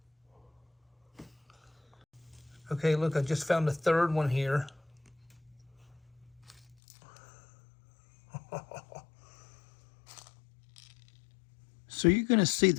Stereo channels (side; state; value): right; drops out; at 6.8 s